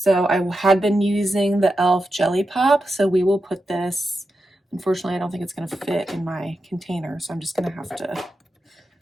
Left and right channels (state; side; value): normal; both; correlation 0.89